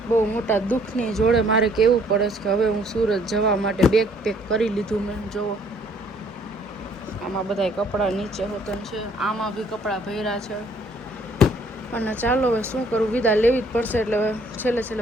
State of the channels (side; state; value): both; normal; correlation 0.61